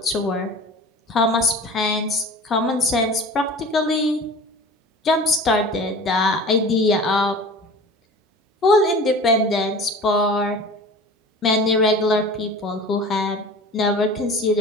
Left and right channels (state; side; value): normal; both; correlation 0.39